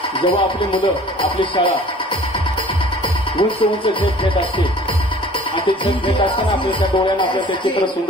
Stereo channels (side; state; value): both; normal; correlation 0.49